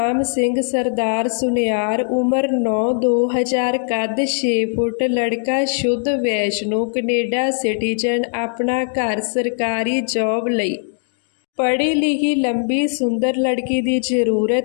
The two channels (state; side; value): silent; right; digital silence